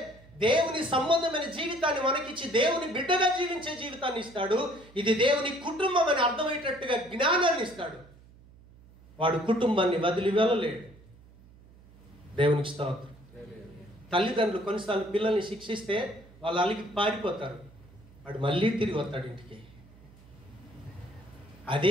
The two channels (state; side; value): noise; right; hum, 24 dB below the sound